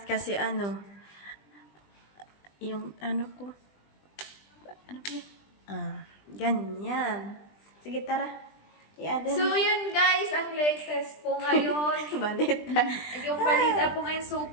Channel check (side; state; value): right; late; 20 ms